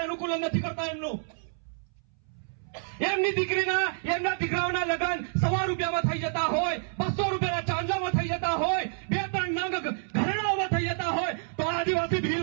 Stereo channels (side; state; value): left; silent; 59 dB below the other